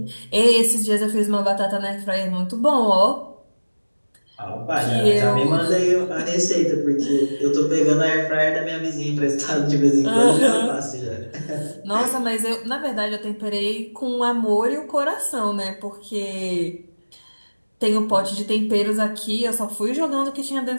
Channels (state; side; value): inverted; both; correlation -1.00